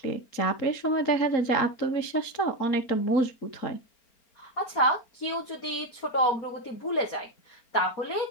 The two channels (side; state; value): right; late; 4.4 ms